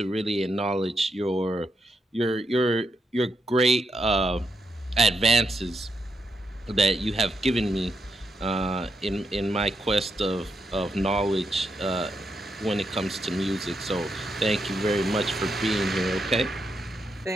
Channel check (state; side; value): normal; both; correlation 0.82